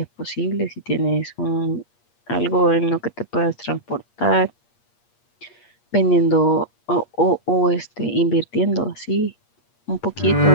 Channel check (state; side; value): late; right; 8.5 ms